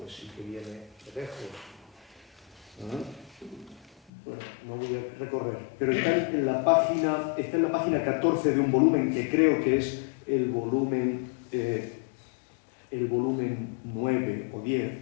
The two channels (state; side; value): drops out; right; at 4.1 s